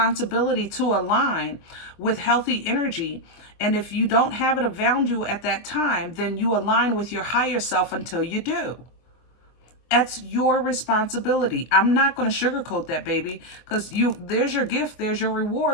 to align with healthy energy. And if you don't have it around you at that time, then you align with your higher self until you do. That's your responsibility. I'm not going to sugarcoat that, baby, because there's your gift, there's your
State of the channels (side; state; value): right; late; 24 ms